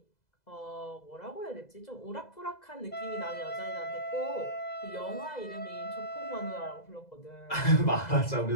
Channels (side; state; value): right; late; 2.0 ms